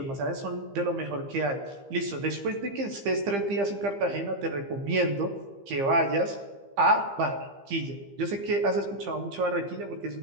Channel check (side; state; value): left; late; 15 ms